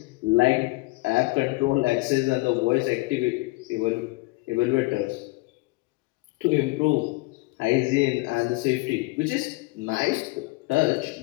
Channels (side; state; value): right; quieter; 23.3 dB